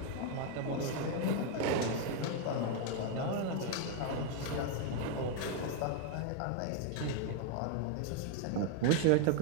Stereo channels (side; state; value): both; different; correlation 0.00